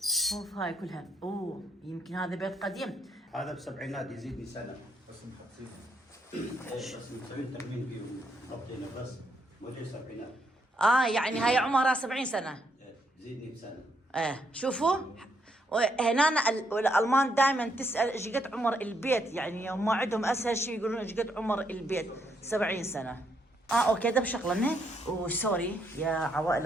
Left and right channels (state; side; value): normal; both; correlation 0.75